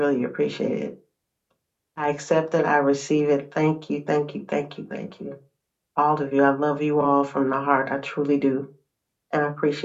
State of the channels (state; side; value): identical; both; correlation 1.00